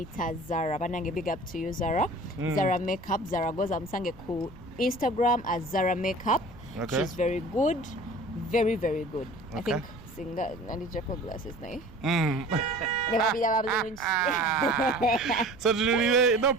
Zara, banange big up to you Zara. Zara makeup, Zara goza musange ku Instagram as Zara makeup. Okay. She's very good, very very good. Okay. I think singa nandi Jaco glasses nae. Never be that. So no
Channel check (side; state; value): right; noise; rumble, 20 dB below the sound